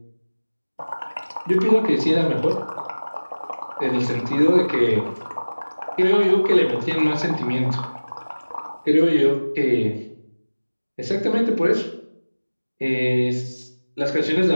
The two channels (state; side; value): inverted; both; correlation -1.00